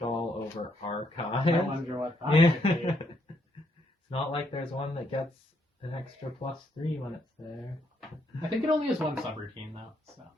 over archive. I wonder what that Yeah. could be. It's not like there's one that gets an extra +3 when it's there. I think it only has one subroutine though, so.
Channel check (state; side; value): normal; both; correlation 0.74